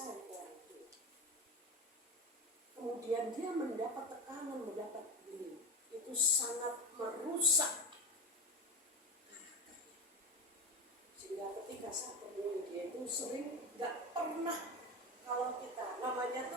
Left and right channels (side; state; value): both; normal; correlation 0.22